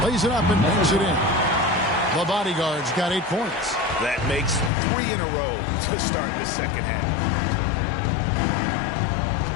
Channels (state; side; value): drops out; right; at 4.7 s